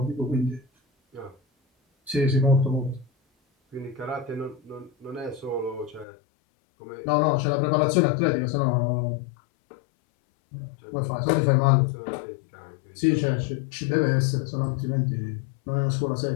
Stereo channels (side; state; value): right; drops out; at 6.1 s